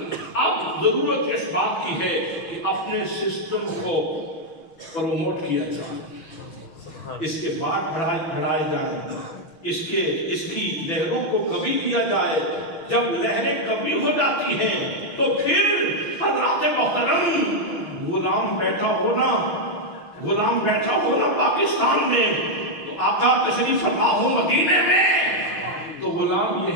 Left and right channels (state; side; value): late; right; 6.4 ms